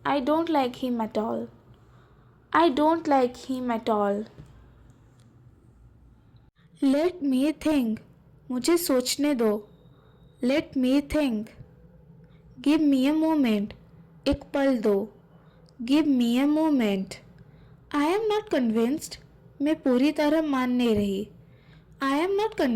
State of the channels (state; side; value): identical; both; correlation 1.00